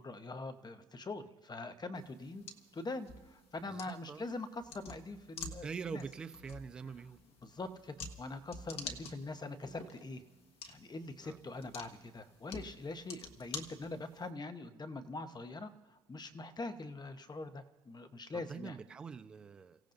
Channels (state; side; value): normal; both; correlation 0.63